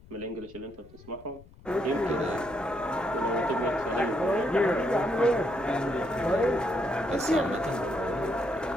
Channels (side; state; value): left; noise; rumble, 22 dB below the sound